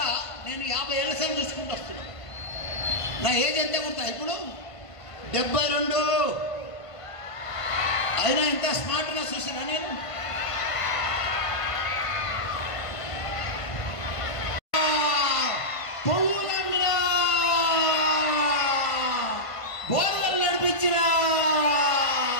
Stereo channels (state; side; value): late; right; 1.5 ms